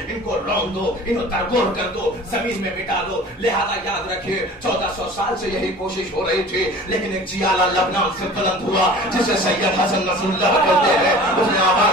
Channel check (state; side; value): normal; both; correlation 0.42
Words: ان کو رون دو، ان کو ترکور کر دو، زمین میں مٹا دو. لہذا یاد رکھیے 1400 سال سے یہی کوشش ہو رہی تھی. لیکن ایک چیالہ لبنان سے بلند ہوا جسے سید حسن نصر اللہ کہتے ہیں، اس نے